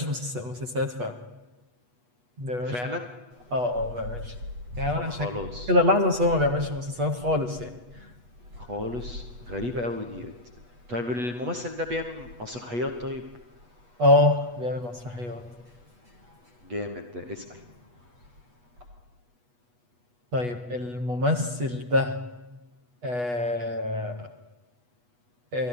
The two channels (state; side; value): late; left; 8.2 ms